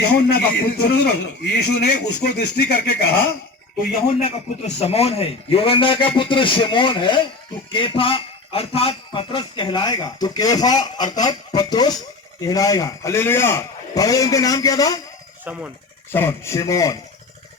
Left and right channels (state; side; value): quieter; right; 3.5 dB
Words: का पुत्र। यीशु ने उसको दृष्टि करके कहा, तो यूहन्ना का पुत्र शमौन है, यूहन्ना का पुत्र शिमोन है, तू केफा अर्थात पतरस कहलाएगा। तो केफा अर्थात पत्रोस कहलाएगा। हालेलुया। पहले उनका नाम क्या था? शमौन। शमौन, शिमोन।